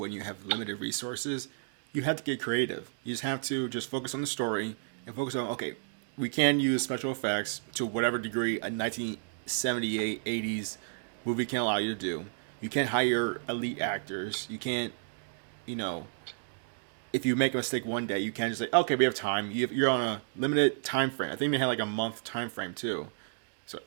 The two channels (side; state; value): left; silent; digital silence